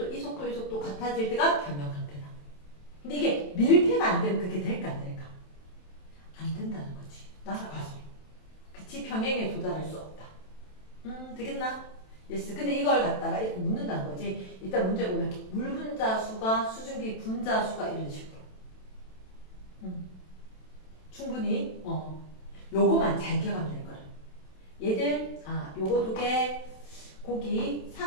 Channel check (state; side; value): late; right; 27 ms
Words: 이 속도 같아질 때가 평형 상태다. 근데 이게 밀폐가 안 되면 그게 될까 안 될까? 안 된다는 거지. 날아가서. 그치? 평행에 도달할 수 없다. 되겠나? 예스. 근데 이걸 갖다가 이렇게 묻는다는 거지. 일단 문제 보면 물 분자수가 수증기 분자수가 이런 식으로. 충분히 요거만 잘 기억하면 될 거라. 얘들 요거 두 개 거기